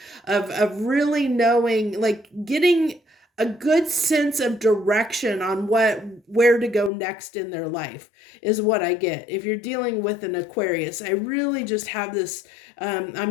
of really knowing, like getting a good sense of direction on where to go next in their life is what I get. If you're dealing with an Aquarius, I really just have this,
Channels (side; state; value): right; drops out; at 6.9 s